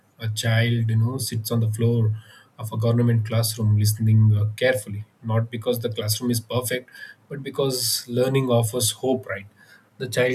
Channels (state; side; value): identical; both; correlation 1.00